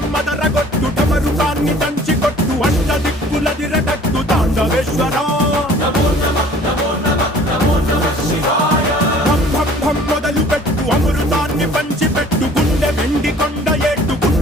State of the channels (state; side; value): normal; both; correlation 0.51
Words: మదరగొట్టు టమరుకాన్ని దంచి కొట్టు అంట దిక్కులదిరగట్టు తాండవేశ్వరా మొదలు పెట్టు అమృతాన్ని పంచిపెట్టు గుండె వెండి కొండ ఏట్టు